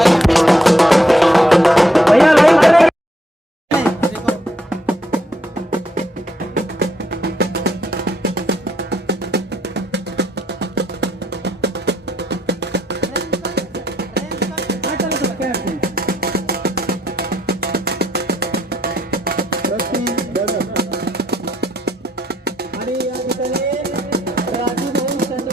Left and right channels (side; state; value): both; normal; correlation 0.74